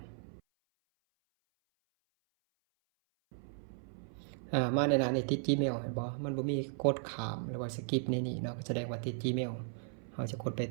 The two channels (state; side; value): silent; left; 54 dB below the other